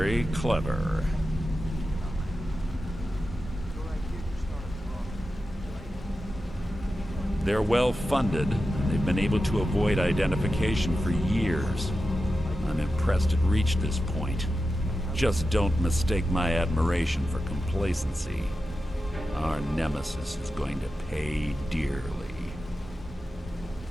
clever. They're well funded, and they've been able to avoid identification for years. I'm impressed it reached this point. Just don't mistake my admiration for complacency. Our nemesis is going to pay dearly.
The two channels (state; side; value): normal; both; correlation 0.91